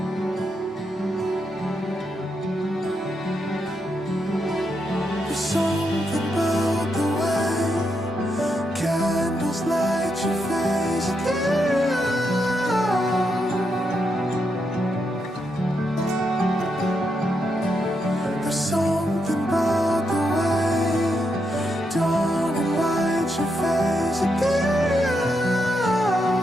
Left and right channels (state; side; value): normal; both; correlation 0.82